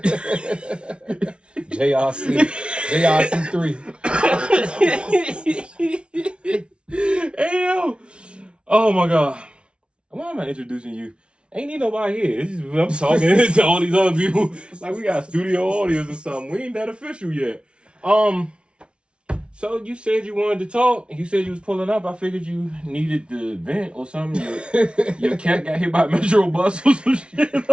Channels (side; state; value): left; late; 0.058 ms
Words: JRC3. Hey, oh my God. Why am I introducing you? Ain't need nobody here. I'm talking to all these other people. Like we got studio audience or something. We ain't that official yet. So you said you wanted to talk. You said you was pulling up. I figured you needed the vent or something. Your cat got hit by a metro bus or some shit.